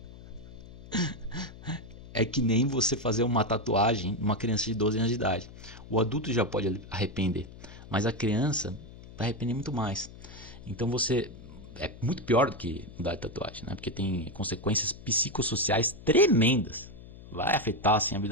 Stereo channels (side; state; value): left; noise; hum, 17 dB below the sound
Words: É que nem você fazer uma tatuagem numa criança de 12 anos de idade. O adulto já pode arrepender, mas a criança vai arrepender muito mais. Então você é muito pior do que mudar de tatuagem, né? Porque tem consequências psicossociais tremendas. Vai afetar assim, a